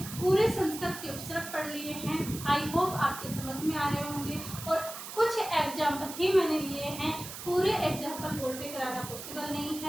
पूरे संस्कृत के उपसर्ग पढ़ लिए हैं। आई होप आपके समझ में आ रहे होंगे, और कुछ एग्जाम्पल ही मैंने लिए हैं, पूरे एग्जाम्पल बोर्ड पे कराना पॉसिबल नहीं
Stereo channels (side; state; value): right; noise; hiss, 10 dB below the sound